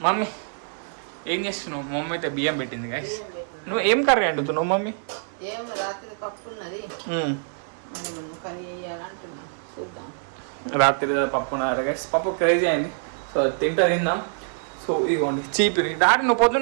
మమ్మీ ఏం చేస్తున్నావు? మమ్మీ అయితే బియ్యం పెట్టింది గైస్. నువ్వు ఏం కర్రీ వండుతున్నావు మమ్మీ? రాత్రి పప్పు ఉన్నారు గైస్. పప్పు క్రేజీ అయింది. సో తిందా. సో ఇదిగోండి చీపిరి. డాడీ నువ్వు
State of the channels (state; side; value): silent; left; digital silence